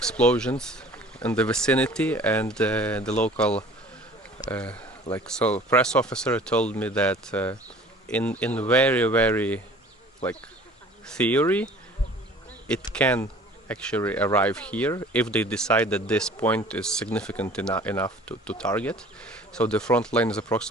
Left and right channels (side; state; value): both; normal; correlation 0.48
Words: in the vicinity, and the local press officer told me that in very like theory it can actually arrive here if they decide that this point is significant enough to target. So the front line is